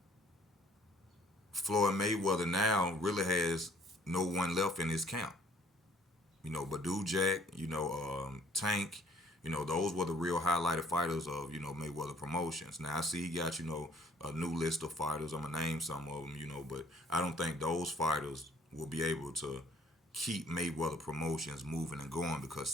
Floyd Mayweather now really has no one left in his camp. Badu Jack, Tank, those were the real highlighted fighters of, Mayweather Promotions. Now I see he got, a new list of fighters. I'm gonna name some of them, but I don't think those fighters will be able to keep Mayweather Promotions moving and going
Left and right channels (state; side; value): normal; both; correlation 0.58